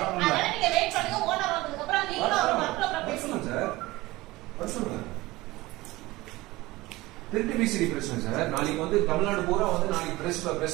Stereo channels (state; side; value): quieter; left; 19.9 dB